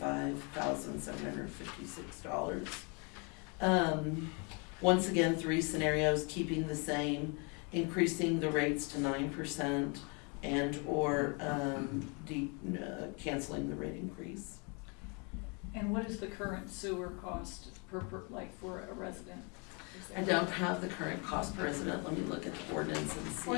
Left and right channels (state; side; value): quieter; right; 33.2 dB